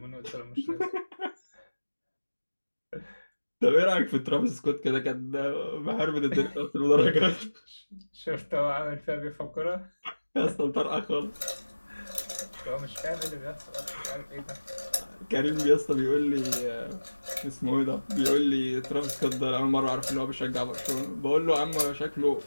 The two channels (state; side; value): inverted; both; correlation -1.00